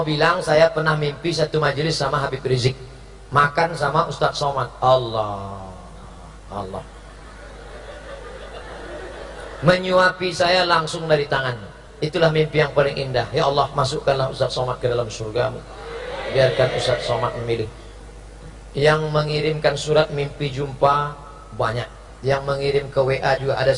bilang, saya pernah mimpi satu majelis sama Habib Rizik, makan sama Ustadz Somad. Allah menyuapi saya langsung dari tangannya. Itulah mimpi yang paling indah. Ya Allah, masukkanlah Ustadz Somad ke dalam surgamu. Biarkan Ustadz Somad memilih. Yang mengirimkan surat mimpi jumpa banyak. Yang mengirim ke WA juga ada,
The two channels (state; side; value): identical; both; correlation 1.00